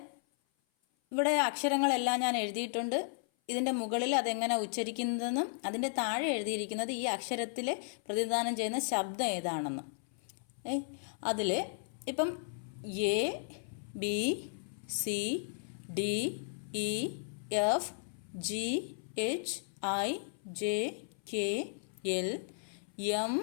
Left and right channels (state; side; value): silent; right; 55 dB below the other